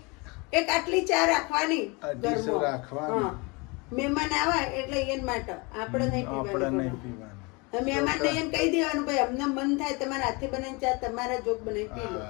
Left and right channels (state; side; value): quieter; right; 28.1 dB